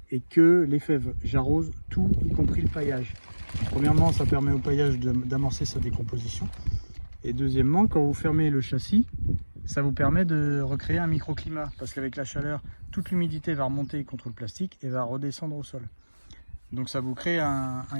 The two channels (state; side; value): inverted; both; correlation -1.00